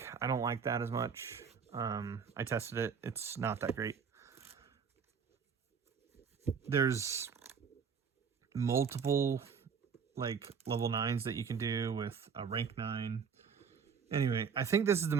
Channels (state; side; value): quieter; left; 6.3 dB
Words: I don't like that as much. I tested it. It's not that great. There's multiple like level 9s that you can do with a rank 9. Anyway, I think this is the